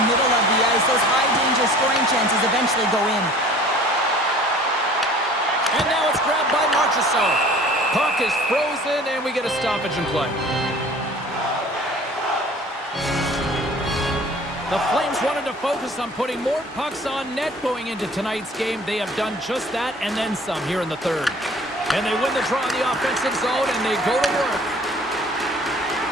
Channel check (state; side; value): normal; both; correlation 0.48